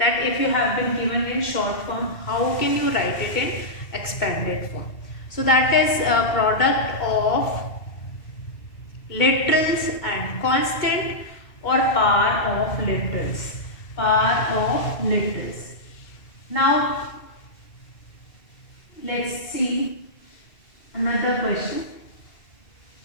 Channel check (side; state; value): right; late; 2.2 ms